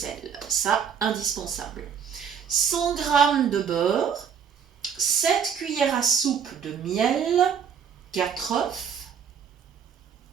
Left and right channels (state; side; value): quieter; left; 7.5 dB